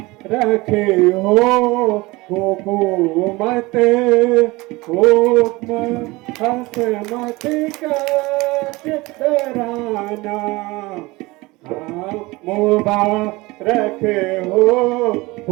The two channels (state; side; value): quieter; left; 22.2 dB